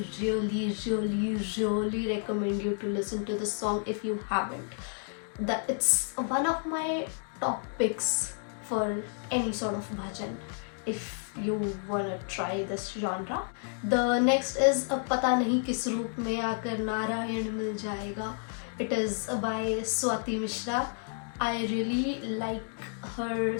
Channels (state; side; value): silent; right; 56 dB below the other